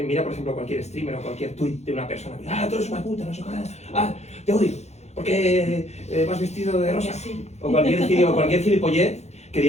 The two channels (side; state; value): right; late; 0.32 ms